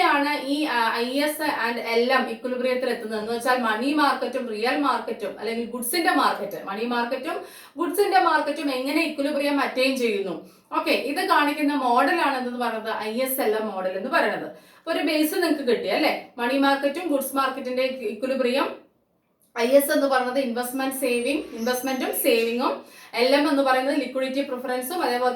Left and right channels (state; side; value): identical; both; correlation 1.00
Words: ഈ IS ആൻഡ് LM ഇക്വിലിബ്രിയത്തിൽ എത്തുന്നത് എന്ന് വെച്ചാൽ മണി മാർക്കറ്റും റിയൽ മാർക്കറ്റും അല്ലെങ്കിൽ ഗുഡ്സിന്റെ മാർക്കറ്റ്, മണി മാർക്കറ്റും ഗുഡ്സിന്റെ മാർക്കറ്റും എങ്ങനെ ഇക്വിലിബ്രിയം അറ്റൈൻ ചെയ്യുന്നു. ഓക്കെ, ഇത് കാണിക്കുന്ന മോഡലാണ് എന്ന് പറയുന്നത് ISLM മോഡൽ എന്ന് പറയുന്നത്. ഒരു ബേസ് നിങ്ങൾക്ക് കിട്ടി അല്ലെ? മണി മാർക്കറ്റും ഗുഡ്സ് മാർക്കറ്റിന്റെ ഇക്വിലിബ്രിയം. IS എന്ന് പറയുന്നത് ഇൻവെസ്റ്റ്മെന്റും സേവിങ്ങും. LM എന്ന് പറയുന്നത് ലിക്വിഡിറ്റി പ്രിഫറൻസും അതേപോലെ